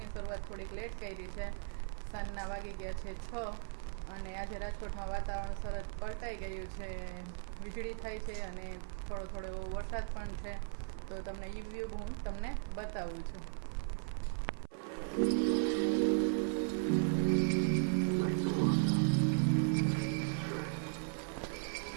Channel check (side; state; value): left; silent; 53 dB below the other